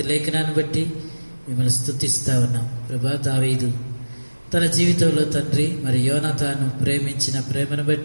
లేఖనాన్ని బట్టి మిమ్మల్ని స్తుతిస్తూ ఉన్నాం ప్రభా. దావీదు తన జీవితంలో తండ్రి మరి యోనాతాను ప్రేమించిన ప్రేమను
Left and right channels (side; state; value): both; inverted; correlation -1.00